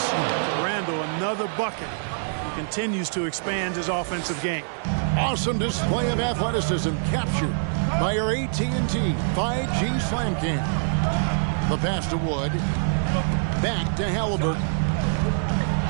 Randall, another bucket. He continues to expand his offensive game. Awesome display of athleticism captured by our AT&T 5G Slam Cam. The pass to Wood. Back to Halliburton.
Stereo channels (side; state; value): left; silent; 62 dB below the other